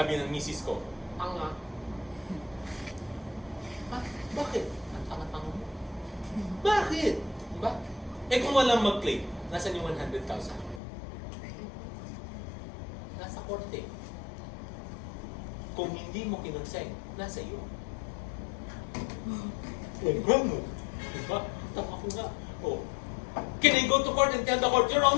ng misis ko, tanga. Bakit? Ang tanga-tanga mo. Bakit? Diba? Eh kung walang mag-claim, nasan yung 100,000? Nasa korte. Kung hindi mo kinonsign, nasa iyo. Ano? Diba? Tama ko nga. Oh. Can I go to court and tell the court, Your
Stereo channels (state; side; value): drops out; right; at 10.8 s